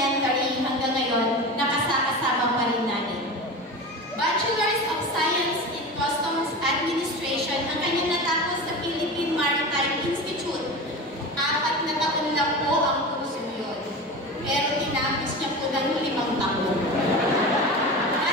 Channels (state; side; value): normal; both; correlation 0.29